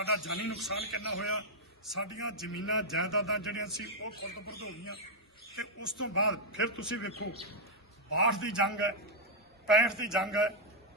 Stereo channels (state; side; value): normal; both; correlation -0.03